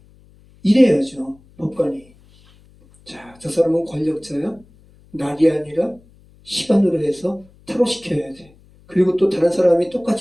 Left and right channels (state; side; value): noise; left; hum, 28 dB below the sound